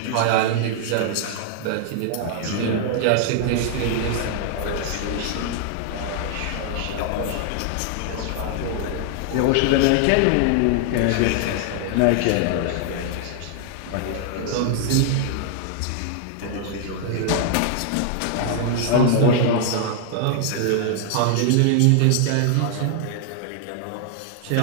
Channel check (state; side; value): different; both; correlation 0.00